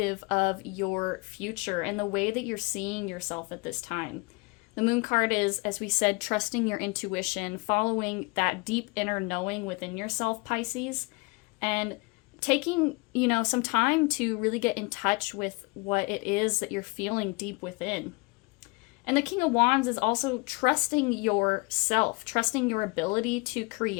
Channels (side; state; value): right; quieter; 27.3 dB